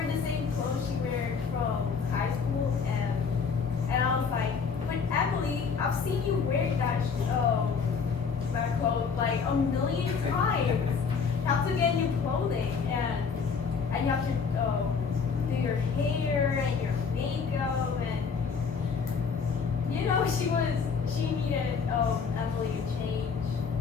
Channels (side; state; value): right; quieter; 5.7 dB